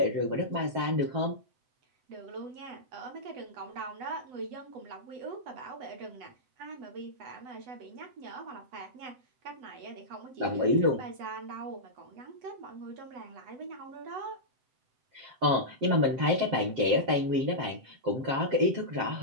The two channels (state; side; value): late; left; 7.5 ms